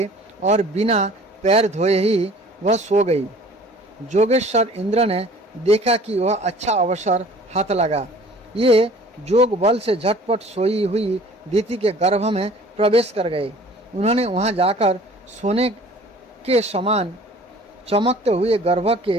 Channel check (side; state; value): both; normal; correlation 0.49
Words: और बिना पैर धोए ही वह सो गई। जोगेश्वर इंद्र ने देखा कि वह अच्छा अवसर हाथ लगा। ये जोग बल से झटपट सोई हुई दिति के गर्भ में प्रवेश कर गए। उन्होंने वहां जाकर सोने के समान चमकते हुए गर्भ